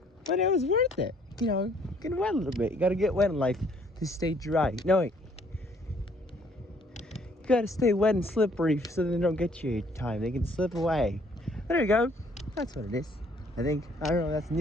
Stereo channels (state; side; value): normal; both; correlation 0.62